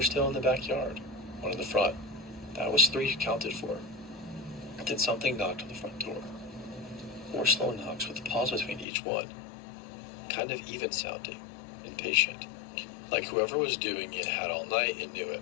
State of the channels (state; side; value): drops out; right; at 8.8 s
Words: still in the backyard, 1 in the front. That was 3 counted for. Then something knocked on the front door. 4 slow knocks with a pause between each one. Kind of even sounding, impatient. Like whoever was doing it had all night and knew it.